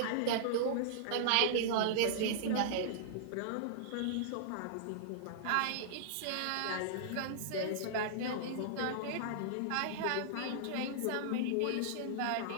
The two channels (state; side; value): different; both; correlation -0.02